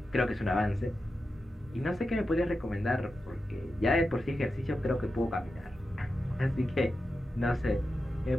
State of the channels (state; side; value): normal; both; correlation 0.90